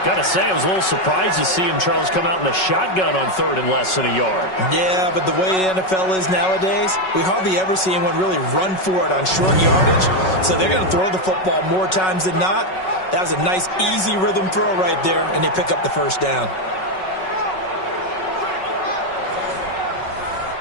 Got to say, I was a little surprised to see him, Charles, come out in the shotgun on 3rd and less than a yard. Yeah, but the way the NFL is nowadays, we hardly ever see anyone really run for it on short yardage. So they're going to throw the football more times than not. That was a nice, easy rhythm throw right there, and they pick up the first down.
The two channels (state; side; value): late; right; 5.4 ms